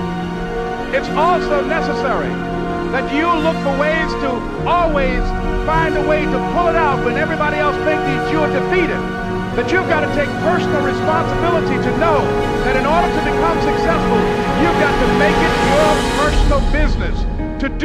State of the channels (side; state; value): both; identical; correlation 1.00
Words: It's also necessary that you look for ways to always find a way to pull it out when everybody else thinks that you're defeated. That you've got to take personal responsibility to know that in order to become successful, you've got to make it your personal business to